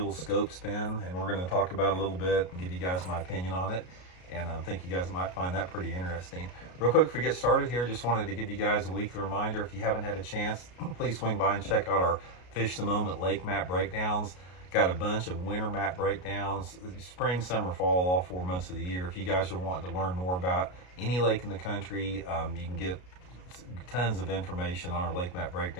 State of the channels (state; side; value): late; right; 33 ms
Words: Scope Spin, and we're going to talk about it a little bit and give you guys my opinion on it. And I think you guys might find that pretty interesting. Real quick, before we get started here, just wanted to give you guys a weekly reminder. If you haven't had a chance, please swing by and check out our Fish the Moment lake map breakdowns. Got a bunch of winter map breakdowns, spring, summer, fall, all 4 months of the year. If you guys are wanting to learn more about any lake in the country, you can get tons of information on our lake map